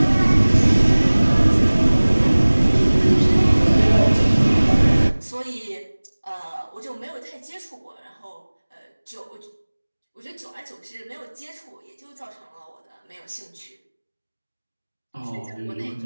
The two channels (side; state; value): both; inverted; correlation -1.00